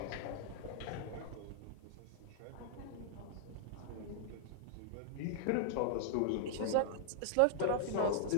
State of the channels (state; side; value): different; both; correlation -0.01